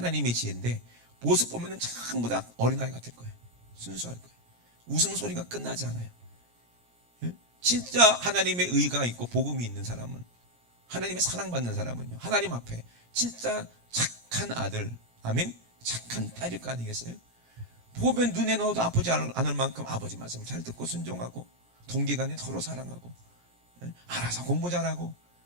지혜인데 모습 보면은 전부 다 어린아이 같을 거예요. 순수할 거예요. 웃음소리가 끝나지 않아요. 예? 진짜 하나님의 의가 있고 복음이 있는 사람은, 하나님의 사랑받는 사람은요 하나님 앞에 진짜 착한 아들, 아멘, 착한 딸일 거 아니겠어요? 보면 눈에 넣어도 아프지 않을 만큼 아버지 말씀을 잘 듣고 순종하고 동기간에 서로 사랑하고, 예? 알아서 공부 잘하고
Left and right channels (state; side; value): late; left; 17 ms